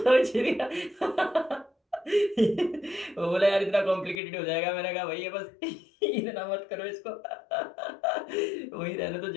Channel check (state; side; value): drops out; right; at 4.2 s